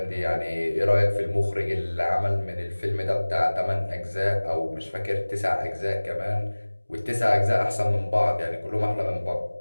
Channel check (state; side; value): inverted; both; correlation -1.00